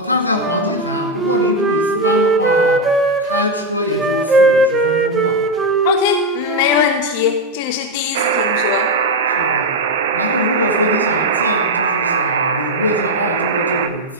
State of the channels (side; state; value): both; normal; correlation 0.05